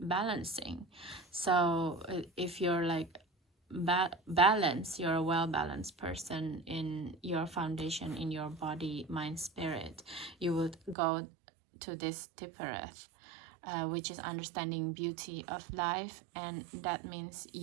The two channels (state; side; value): drops out; left; at 11.0 s